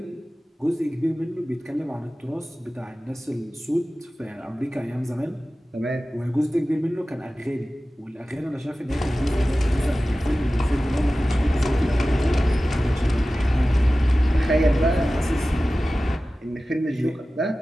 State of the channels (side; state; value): both; normal; correlation 0.96